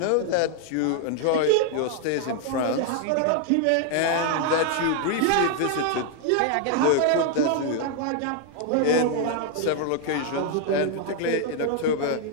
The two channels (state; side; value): different; both; correlation 0.00